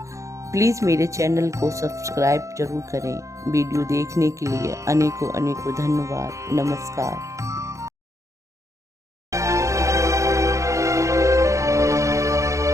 प्लीज़ मेरे चैनल को सब्सक्राइब जरूर करें। वीडियो देखने के लिए अनेकों धन्यवाद। नमस्कार।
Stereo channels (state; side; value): late; left; 0.15 ms